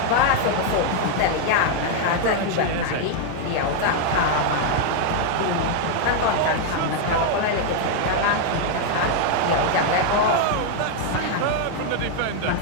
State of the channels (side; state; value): both; different; correlation 0.00